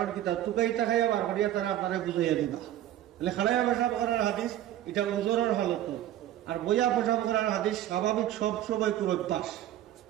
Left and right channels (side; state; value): left; quieter; 12.8 dB